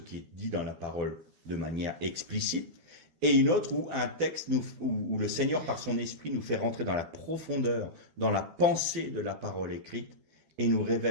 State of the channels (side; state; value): left; late; 12 ms